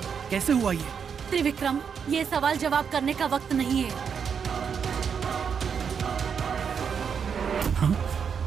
कैसे हुआ ये? त्रिविक्रम, ये सवाल जवाब करने का वक्त नहीं है।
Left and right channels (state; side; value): quieter; left; 6.8 dB